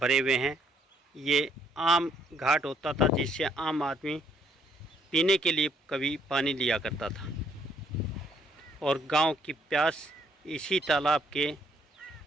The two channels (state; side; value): normal; both; correlation 0.68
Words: हुए हैं, ये आम घाट होता था जिससे आम आदमी पीने के लिए कभी पानी लिया करता था, और गांव की प्यास इसी तालाब के